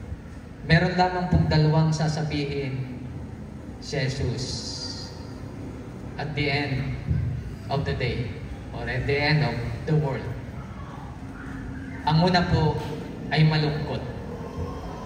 meron lamang pong dalawang sasabihin si Jesus at the end of the day or at the end of the world. Ang una po ay malungkot.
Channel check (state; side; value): identical; both; correlation 1.00